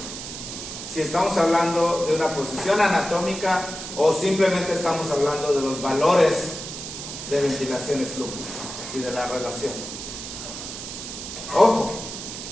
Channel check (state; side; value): noise; right; hiss, 9 dB below the sound